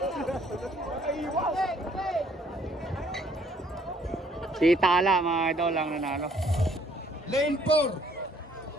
Si Tala mga idol ang nanalo. Lane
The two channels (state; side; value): normal; both; correlation 0.63